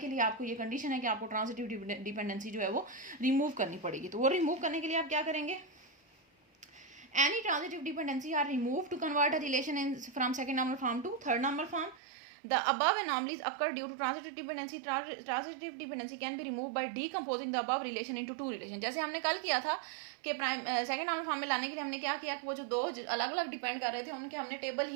लिए आपको ये कंडीशन है कि आपको ट्रांजिटिव डिपेंडेंसी जो है वो रिमूव करनी पड़ेगी। तो वो रिमूव करने के लिए आप क्या करेंगे, any transitive dependency are remove to convert a relation in from second normal form to third normal form. The above anomalies occur due to transitive dependency. Transitive dependency can be removed by decomposing the above relation into two relation. जैसे हमने कल किया था कि second normal form में लाने के लिए हमने क्या किया, वो जो दो अलग अलग डिपेंड कर रहे थे उनके हमने टेबल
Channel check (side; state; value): left; drops out; at 12.0 s